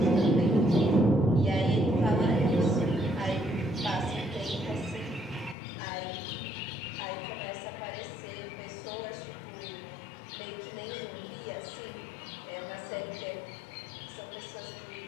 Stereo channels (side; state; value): right; drops out; at 5.6 s